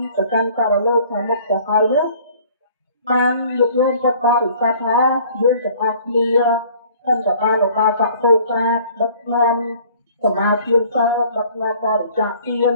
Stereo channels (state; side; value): inverted; both; correlation -0.53